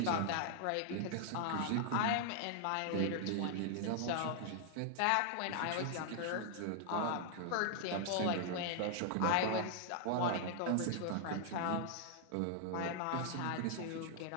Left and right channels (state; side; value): different; both; correlation 0.00